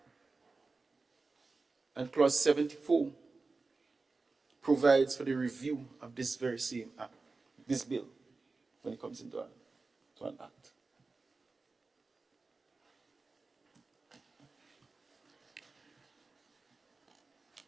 And clause 74 provides for the review of this very same Act, this bill, when it comes into an Act.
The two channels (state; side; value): quieter; left; 3.8 dB